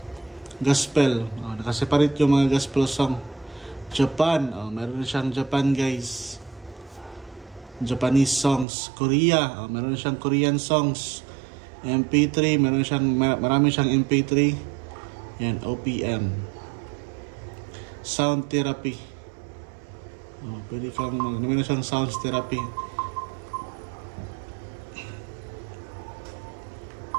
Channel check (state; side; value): drops out; left; at 8.7 s